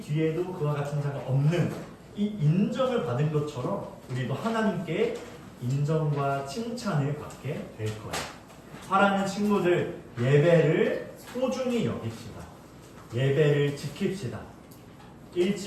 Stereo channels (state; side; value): identical; both; correlation 1.00